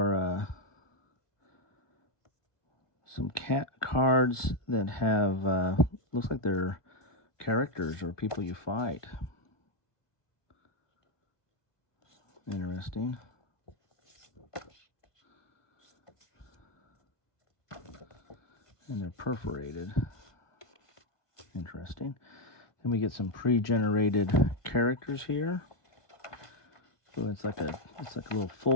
some cat cards that have, looks like they're characters or people you fight. Interesting. And they're perforated. Interesting. Then we get some pre-generated characters here. So it's like a little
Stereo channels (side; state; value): right; late; 1.2 ms